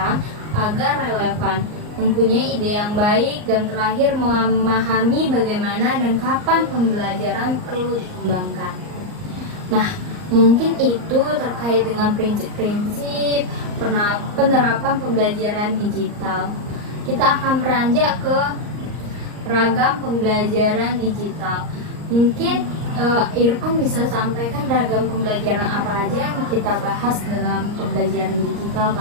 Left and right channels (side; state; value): left; late; 38 ms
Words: agar relevan, mempunyai ide yang baik, dan terakhir memahami bagaimana dan kapan pembelajaran perlu dikembangkan. Nah, mungkin itu terkait dengan prinsip-prinsip penerapan pembelajaran digital. Kita akan beranjak ke ragam pembelajaran digital. Mungkin Irfan bisa sampaikan ragam pembelajaran apa aja yang kita bahas dalam pembelajaran digital